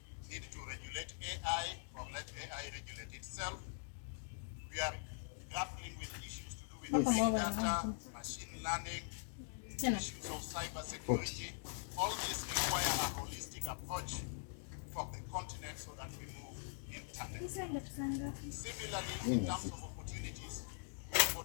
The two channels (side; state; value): right; silent; digital silence